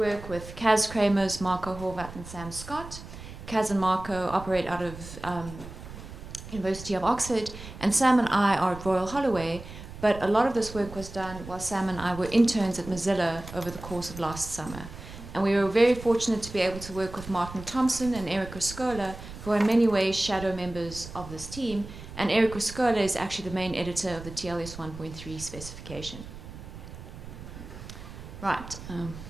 with Kaz Kramers, Marco Horvat, and Sam Scott. Kaz and Marco operate out of University of Oxford, and Sam and I are at Royal Holloway. But a lot of this work was done while Sam and I were interns at Mozilla over the course of last summer. And we were very fortunate to be able to work with Martin Thompson and Eric Riscola, who are in many ways shadow members of this team. And Eric Riscola is actually the main editor of the TLS 1.3 specification. Right.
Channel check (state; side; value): noise; right; rumble, 13 dB below the sound